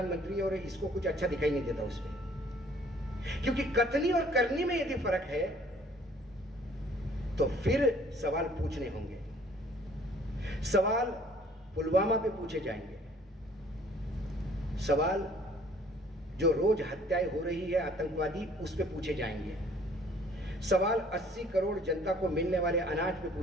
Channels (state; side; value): normal; both; correlation 0.57